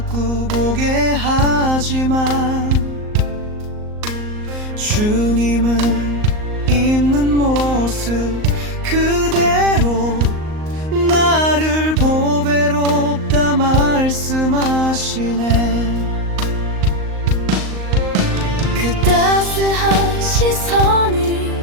보게 하지만 주님은 있는 모습 그대로 나를 보배롭다 말씀하시네. 그 따스한 시선이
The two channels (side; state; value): left; late; 38 ms